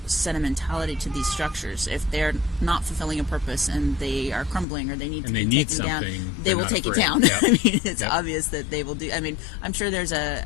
sentimentality to these structures. If they're not fulfilling a purpose and they are crumbling or they need to be taken down, they will take it down. I mean, it's obvious that they will do. I mean, I'm sure there's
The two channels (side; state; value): right; drops out; at 4.7 s